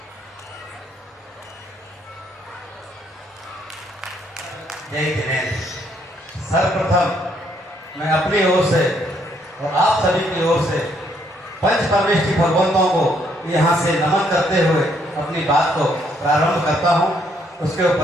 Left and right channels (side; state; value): both; normal; correlation 0.70